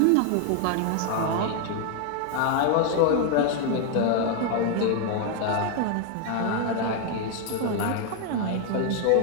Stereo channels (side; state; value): both; different; correlation 0.00